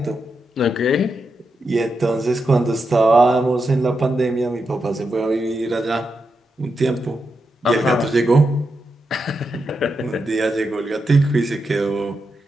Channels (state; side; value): normal; both; correlation 0.86